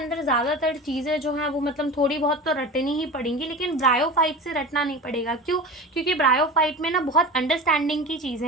ज़्यादातर चीज़ें जो हैं वो मतलब थोड़ी बहुत तो रटनी ही पड़ेंगी, लेकिन ब्रायोफाइट से रटना नहीं पड़ेगा। क्यों, क्योंकि ब्रायोफाइट में ना बहुत अंडरस्टैंडिंग की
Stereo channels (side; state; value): both; normal; correlation 0.32